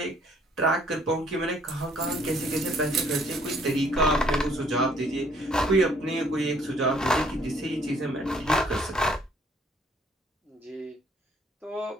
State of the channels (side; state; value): both; normal; correlation 0.63